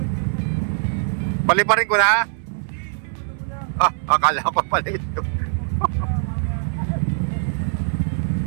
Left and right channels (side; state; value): left; silent; digital silence